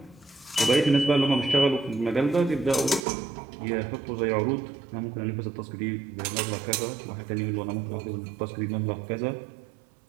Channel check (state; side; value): drops out; left; at 3.0 s